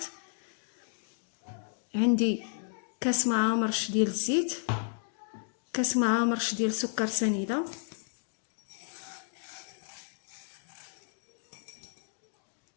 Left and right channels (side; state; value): right; silent; digital silence